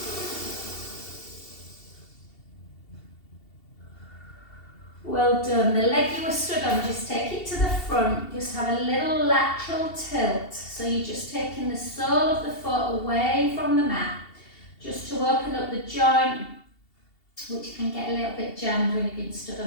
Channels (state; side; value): late; right; 2.7 ms